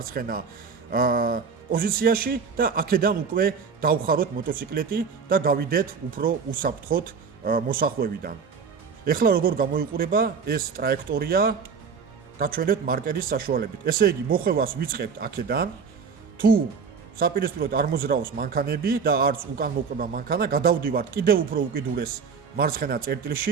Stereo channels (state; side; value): quieter; left; 5.8 dB